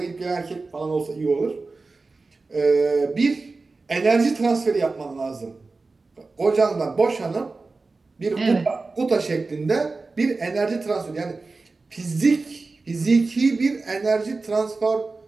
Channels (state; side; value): quieter; left; 3.8 dB